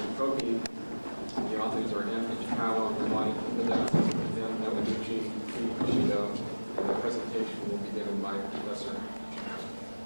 Protein. The authors are M. Ichikawa, Rwani Kibida, M. Yamaguchi, P. Kushido, and the presentation will be given by Professor.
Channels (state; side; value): inverted; both; correlation -1.00